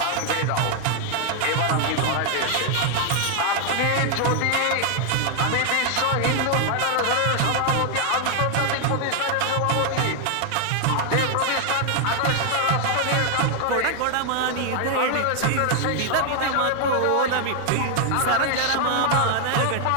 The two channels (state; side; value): different; both; correlation 0.00